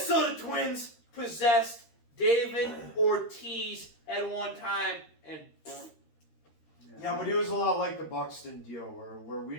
Twins possessed David Ortiz at one time, and Yeah, but he was a lot like the Buxton deal, where we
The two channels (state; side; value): late; right; 13 ms